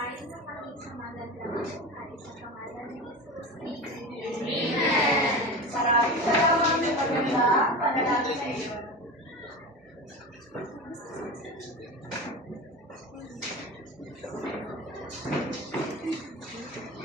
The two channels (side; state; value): both; normal; correlation 0.29